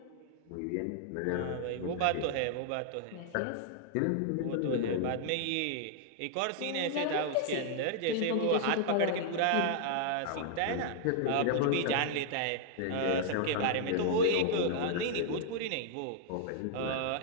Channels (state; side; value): different; both; correlation -0.01